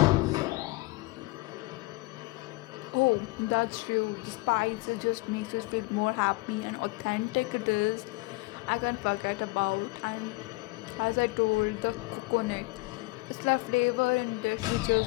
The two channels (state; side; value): quieter; right; 23.5 dB